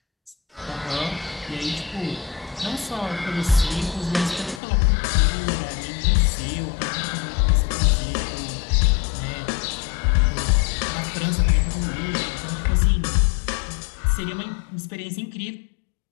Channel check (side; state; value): right; drops out; at 4.6 s